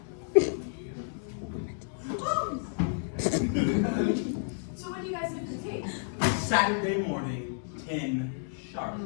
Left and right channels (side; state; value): right; silent; digital silence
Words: So when do you guys have to take? Saturday morning, 10 sharp.